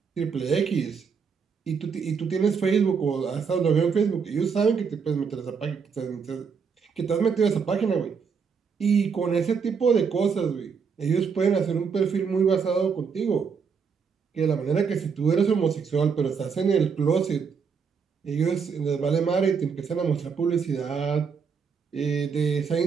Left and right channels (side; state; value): left; quieter; 6.0 dB